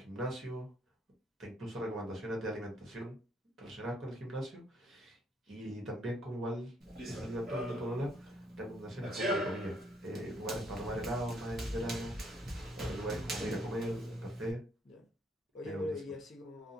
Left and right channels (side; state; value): both; normal; correlation 0.69